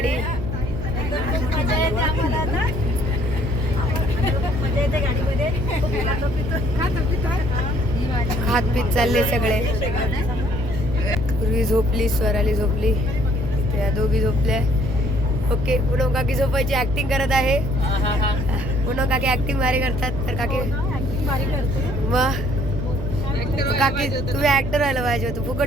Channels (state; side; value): noise; right; hum, 7 dB below the sound